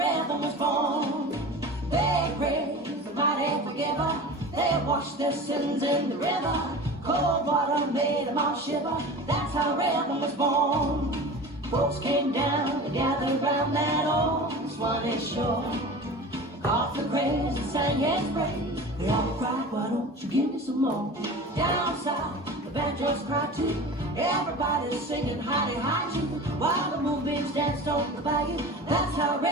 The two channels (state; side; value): normal; both; correlation 0.34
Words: was born. They praised the mighty forgiver. They washed their sins in the river. Cold water made them all shiver. That's how rhythm was born. Folks came down to gather round that old Swanee shore. Off the craze and sang his praise. They all cried, why don't you give me some more? Down south, the banjos cried too. Everybody's singing howdy hi to, while the moonbeams danced on the bayou. That's how